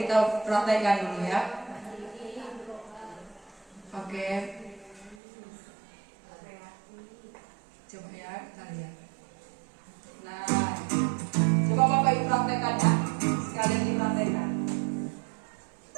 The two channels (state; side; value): drops out; left; at 5.2 s